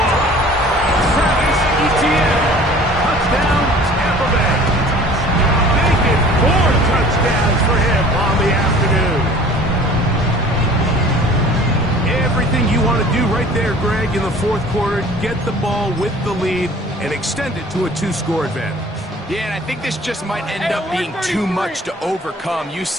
one. Travis Etienne. Touchdown, Tampa Bay. Making 4 touchdowns for him on the afternoon. Everything you want to do right there, Greg, in the fourth quarter. Get the ball with the lead and extend it to a 2-score advantage. Yeah, and I think this just might end up being too much to overcome. You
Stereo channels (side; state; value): both; normal; correlation 0.48